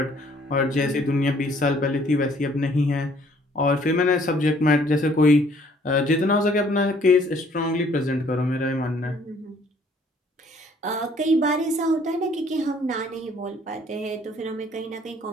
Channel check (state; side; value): normal; both; correlation 0.60